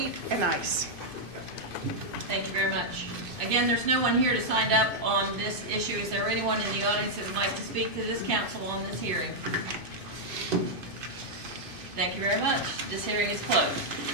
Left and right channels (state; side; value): late; left; 2.5 ms